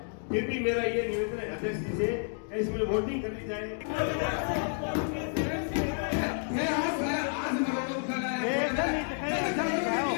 फिर भी मेरा ये निवेदन है अध्यक्ष जी से इसमें वोटिंग करनी चाहिए।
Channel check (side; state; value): right; silent; 58 dB below the other